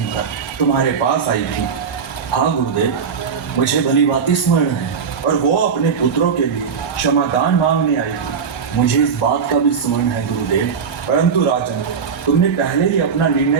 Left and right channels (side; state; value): left; quieter; 6.3 dB